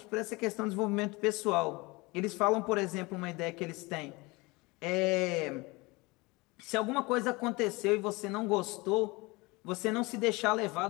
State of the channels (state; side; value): quieter; right; 24.4 dB